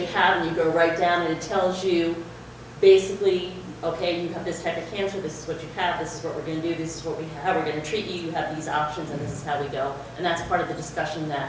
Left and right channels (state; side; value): identical; both; correlation 1.00